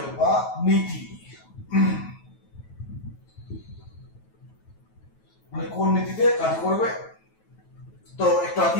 বা নীতি, মানে কোন নীতিতে কাজ করবে। তো একটু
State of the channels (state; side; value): late; right; 9.2 ms